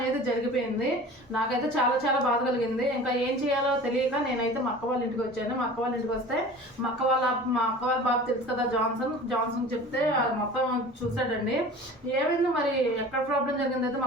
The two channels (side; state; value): both; normal; correlation 0.40